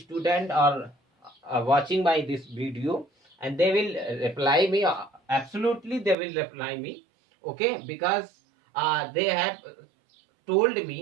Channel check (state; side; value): drops out; left; at 6.2 s